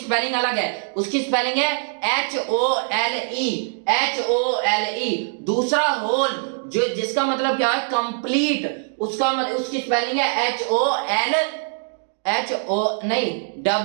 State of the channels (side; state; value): left; silent; digital silence